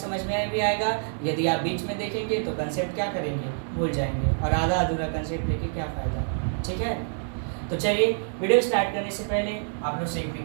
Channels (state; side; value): silent; left; digital silence